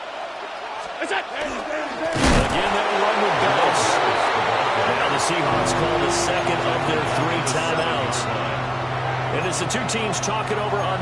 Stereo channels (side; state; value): both; identical; correlation 1.00